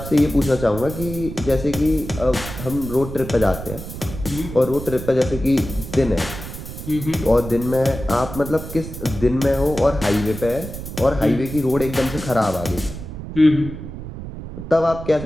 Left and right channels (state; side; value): noise; right; rumble, 10 dB below the sound